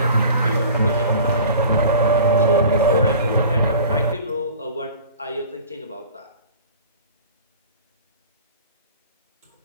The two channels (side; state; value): both; inverted; correlation -0.42